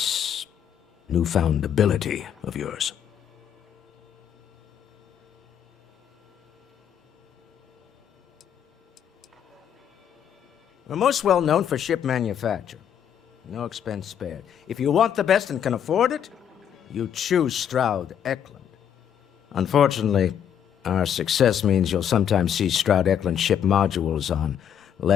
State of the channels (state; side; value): quieter; right; 9.0 dB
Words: newfound ability of yours. We're most well known for ship manufacture. No expense spared. If you want the best and can afford it, you choose Stroud Eklund. Unfortunately, our success means you'll sometimes see Stroud Eklund ship modules on